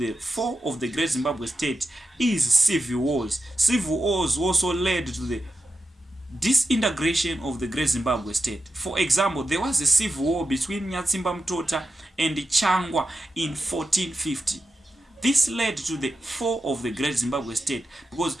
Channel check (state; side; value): normal; both; correlation 0.90